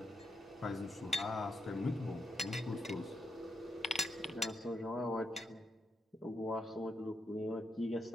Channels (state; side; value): normal; both; correlation 0.81